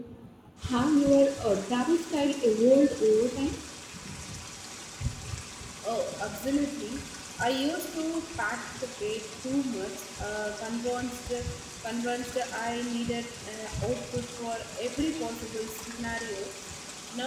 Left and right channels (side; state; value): both; identical; correlation 1.00